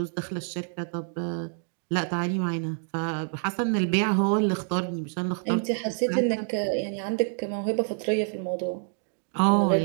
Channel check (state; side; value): silent; left; digital silence